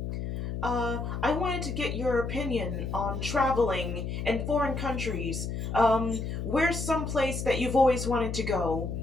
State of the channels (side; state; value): left; noise; hum, 4 dB below the sound